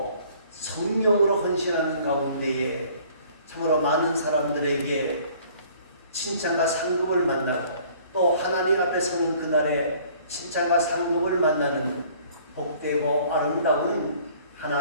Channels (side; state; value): both; inverted; correlation -0.55